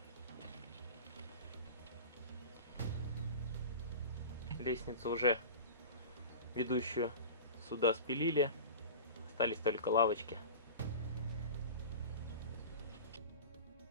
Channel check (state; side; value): inverted; both; correlation -0.32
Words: Лестницу уже ведущую сюда спилили, остались только лавочки.